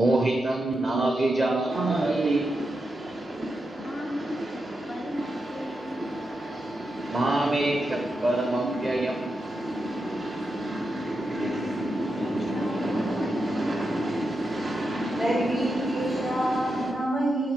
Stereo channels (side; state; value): both; normal; correlation 0.87